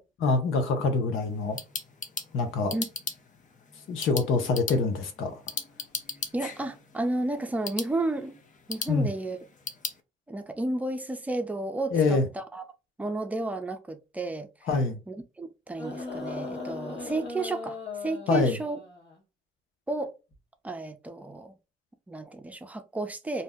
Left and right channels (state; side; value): normal; both; correlation 0.49